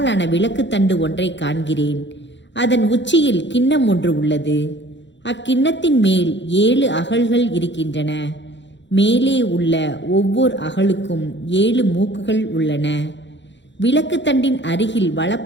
விளக்கு தண்டு ஒன்றை காண்கிறேன். அதன் உச்சியில் கிண்ணம் ஒன்று உள்ளது. அக்கிண்ணத்தின் மேல் 7 அகல்கள் இருக்கின்றன. மேலே உள்ள ஒவ்வொரு அகலுக்கும் 7 மூக்குகள் உள்ளன. விளக்கு தண்டின் அருகில்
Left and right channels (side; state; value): right; late; 0.53 ms